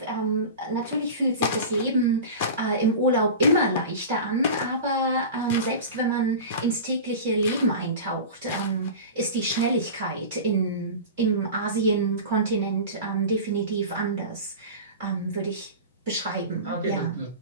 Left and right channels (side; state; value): both; inverted; correlation -0.31